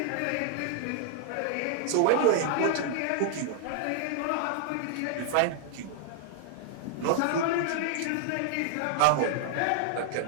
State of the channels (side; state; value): both; different; correlation -0.01